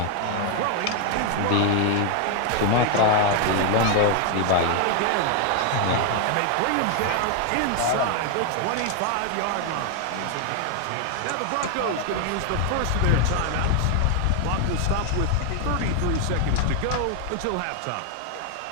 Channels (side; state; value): both; different; correlation 0.00